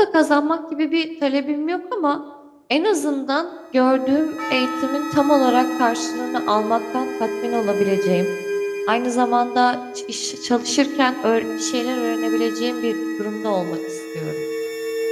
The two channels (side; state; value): both; identical; correlation 1.00